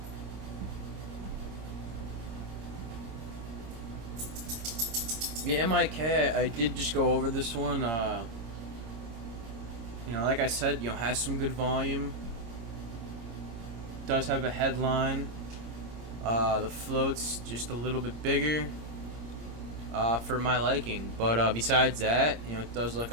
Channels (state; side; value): late; left; 26 ms